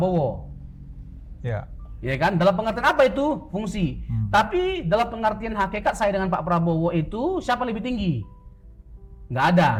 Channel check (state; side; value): identical; both; correlation 1.00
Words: Ya. Ya kan? Dalam pengertian apa itu? Fungsi. Tapi dalam pengertian hakikat saya dengan Pak Prabowo itu siapa lebih tinggi? Nggak ada,